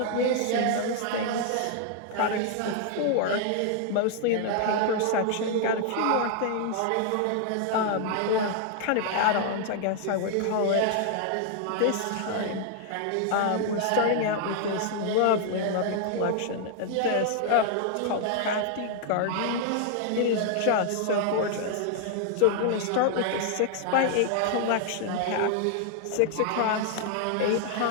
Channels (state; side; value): different; both; correlation 0.00